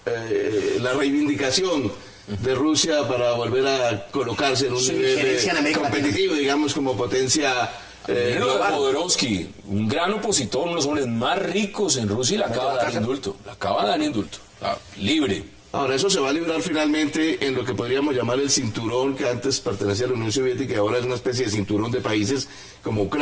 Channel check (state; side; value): identical; both; correlation 1.00